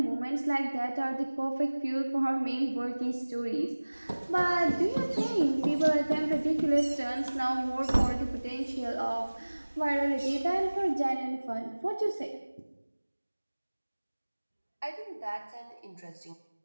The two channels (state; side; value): inverted; both; correlation -1.00